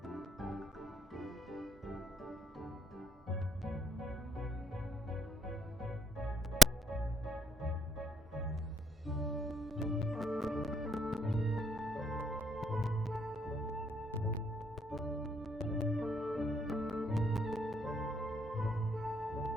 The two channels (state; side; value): normal; both; correlation 0.69